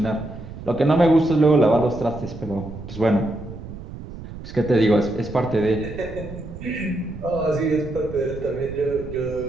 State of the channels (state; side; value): noise; right; rumble, 12 dB below the sound